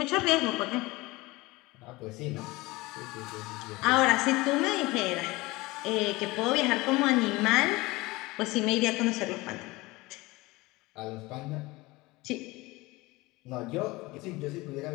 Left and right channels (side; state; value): right; quieter; 21.5 dB